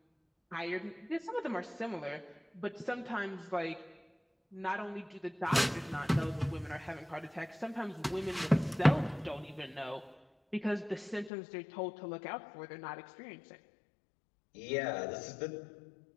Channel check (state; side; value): drops out; right; at 11.3 s